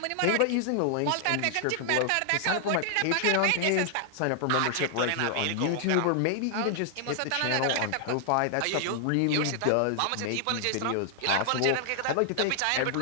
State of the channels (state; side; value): different; both; correlation -0.01